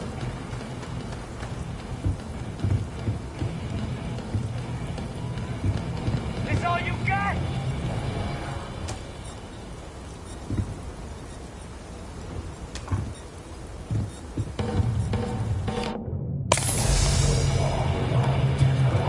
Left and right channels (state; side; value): identical; both; correlation 1.00